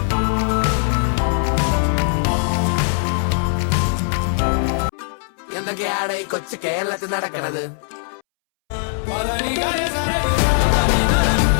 കൊച്ചു കേരളത്തിൽ നടക്കണത്.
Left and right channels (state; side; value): silent; right; 65 dB below the other